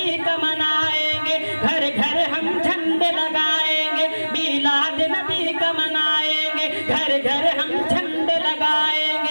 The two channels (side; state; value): both; inverted; correlation -1.00